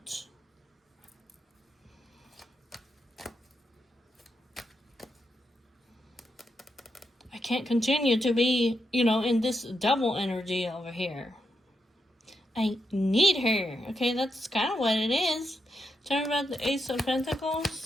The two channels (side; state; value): both; normal; correlation 0.84